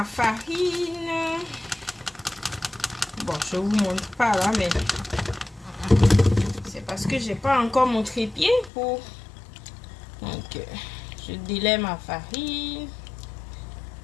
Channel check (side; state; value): right; drops out; at 8.7 s